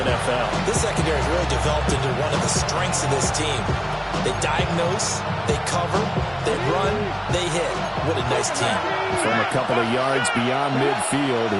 NFL. This secondary has really developed into one of the strengths of this team. They diagnose, they cover, they run, they hit. What a nice team. From a couple of yards beyond midfield,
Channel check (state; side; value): identical; both; correlation 1.00